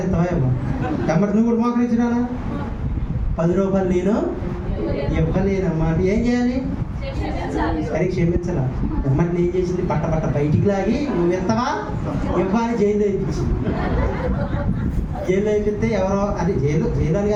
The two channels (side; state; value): both; identical; correlation 1.00